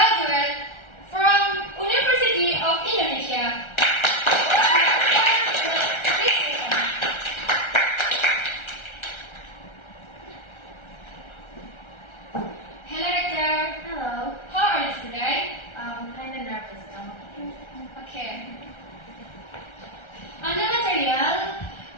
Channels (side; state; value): right; late; 1.3 ms